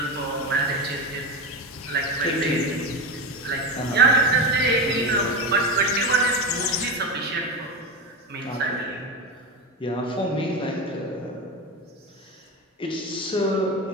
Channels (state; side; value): normal; both; correlation 0.18